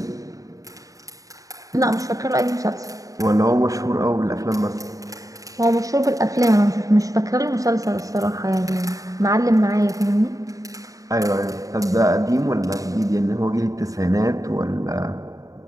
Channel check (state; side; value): late; left; 0.16 ms